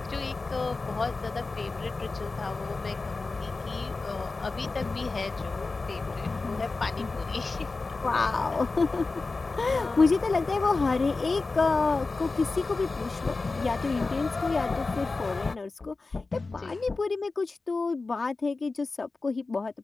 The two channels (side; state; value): right; quieter; 3.7 dB